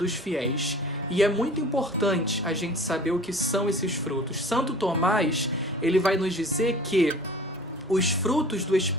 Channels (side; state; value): both; normal; correlation 0.44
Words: fiéis. E é muito importante a gente saber o que são esses frutos. Santo Tomás, ele vai nos dizer que os frutos do